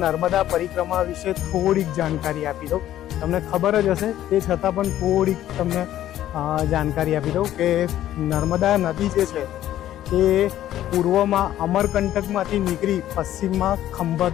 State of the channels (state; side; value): quieter; right; 12.6 dB